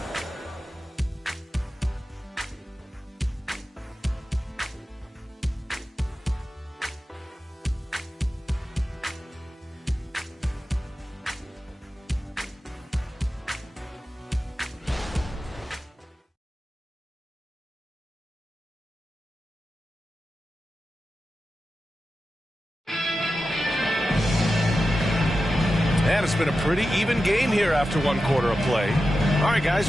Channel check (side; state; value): both; normal; correlation 0.92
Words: And it's been a pretty even game here after 1 quarter of play. All right, guys,